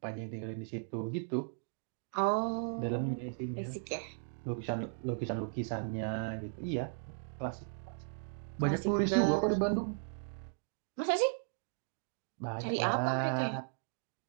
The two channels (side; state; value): left; silent; digital silence